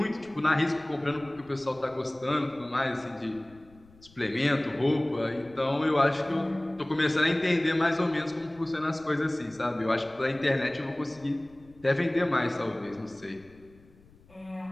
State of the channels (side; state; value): left; noise; rumble, 27 dB below the sound